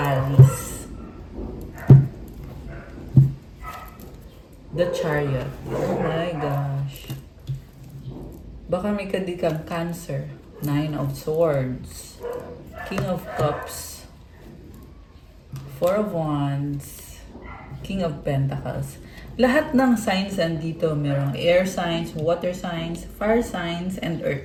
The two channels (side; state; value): both; identical; correlation 1.00